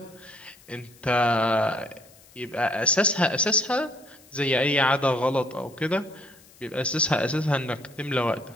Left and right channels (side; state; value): left; noise; hiss, 26 dB below the sound